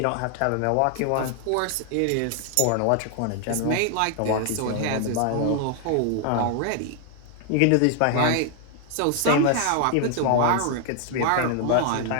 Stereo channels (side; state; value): both; different; correlation 0.00